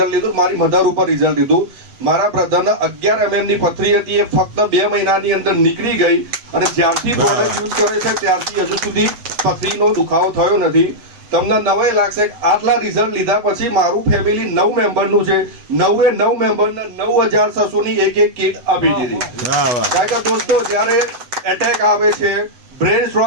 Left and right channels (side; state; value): left; late; 8.0 ms